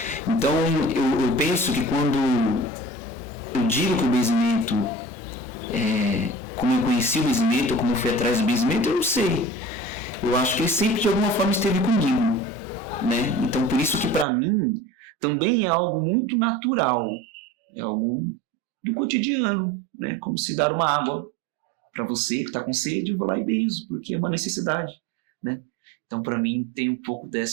Então eu penso que quando eu digo que o benzimento, como eu conheci o benzimento, ou como eu fui atrás do benzimento, eu não sei. Eu acho que ele sempre de alguma forma esteve comigo, né? Então por isso que para mim também é algo muito natural, é algo do cotidiano, né? Como se dar uma água para você que está com sede, eu vou lá e benzo, porque é uma necessidade, né? Então para mim tem um pouco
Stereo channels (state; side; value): drops out; left; at 14.2 s